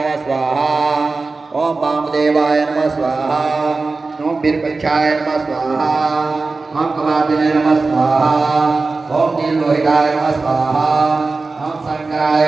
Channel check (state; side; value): quieter; left; 3.8 dB